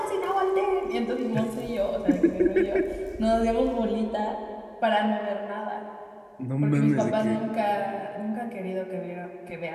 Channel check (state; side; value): identical; both; correlation 1.00